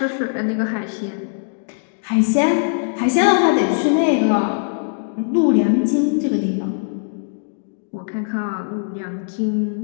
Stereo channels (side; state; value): right; silent; digital silence